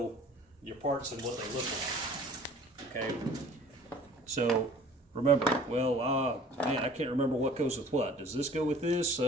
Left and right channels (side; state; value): both; normal; correlation 0.49